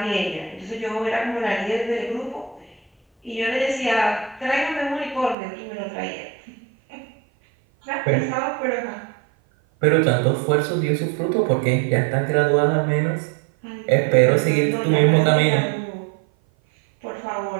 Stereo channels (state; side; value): drops out; left; at 5.4 s